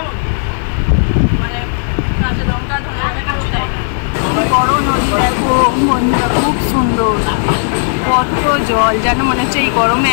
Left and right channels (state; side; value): silent; right; digital silence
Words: বড় নদী দেখো বন্ধুরা, খুব সুন্দর, কত জল, যেন মনে হচ্ছে এই গরমে